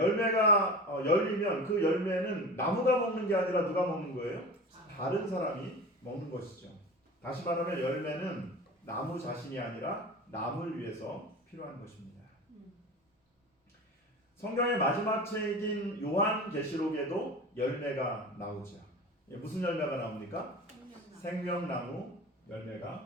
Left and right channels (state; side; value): normal; both; correlation 0.33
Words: 열리면 그 열매는 나무가 먹는 게 아니라 누가 먹는 거예요? 다른 사람이 먹는 것이죠. 다시 말하면 열매는 나무 자신이 아니라 남을 위해서 필요한 것입니다. 성경의 마지막 책인 요한계시록에도 열매가 나오죠. 무슨 열매가 나옵니까? 생명나무